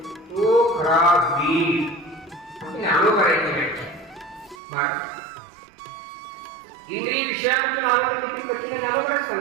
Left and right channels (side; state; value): left; drops out; at 4.5 s